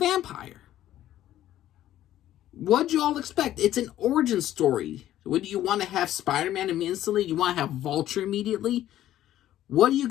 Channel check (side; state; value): right; quieter; 12.9 dB